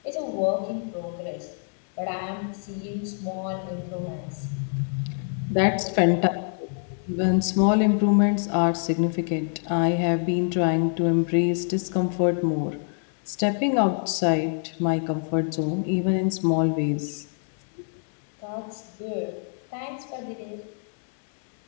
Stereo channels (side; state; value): right; silent; 61 dB below the other